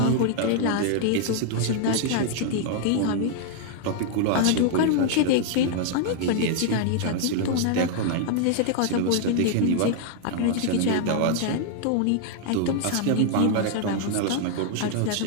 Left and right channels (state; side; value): different; both; correlation 0.00